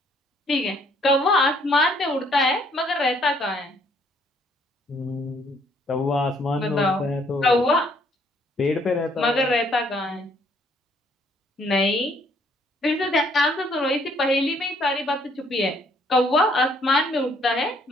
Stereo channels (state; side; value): normal; both; correlation 0.65